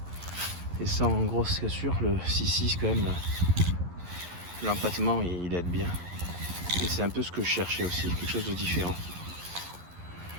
et sans grosse cassure, le 6.6 quand même, l'empattement il aide bien. Et c'est un peu ce que je cherchais aussi, quelque chose de différent.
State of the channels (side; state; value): left; late; 11 ms